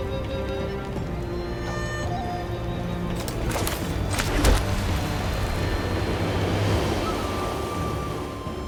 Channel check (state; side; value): identical; both; correlation 1.00